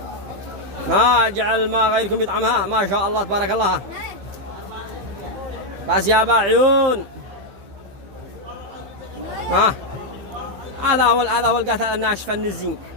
ما جعل الماء غيركم يطعمها. ما شاء الله تبارك الله. بس يا عيون. ها هذا هو القتل الناشفه النزين.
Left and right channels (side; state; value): left; late; 15 ms